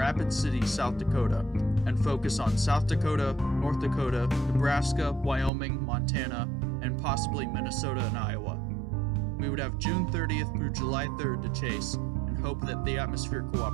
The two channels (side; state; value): left; drops out; at 5.5 s